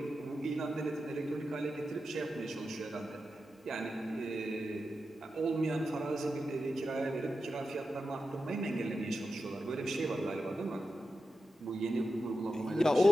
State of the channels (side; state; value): both; normal; correlation 0.90